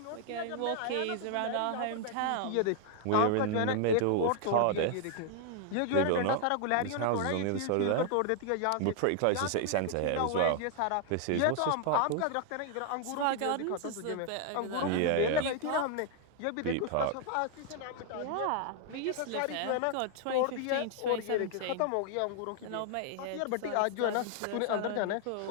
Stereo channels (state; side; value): different; both; correlation 0.00